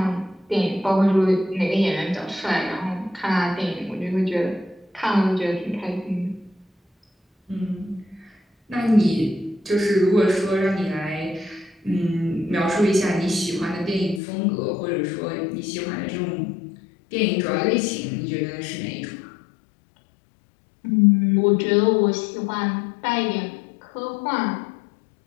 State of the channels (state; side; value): drops out; right; at 14.2 s